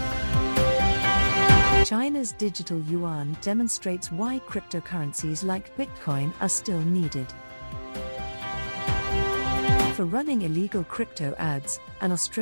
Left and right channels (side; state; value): both; inverted; correlation -1.00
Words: China's digital yuan demonstrates why cryptocurrencies like Bitcoin are still needed. For running illegal crypto ads, an